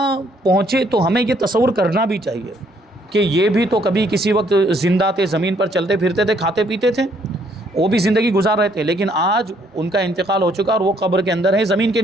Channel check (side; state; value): both; normal; correlation 0.67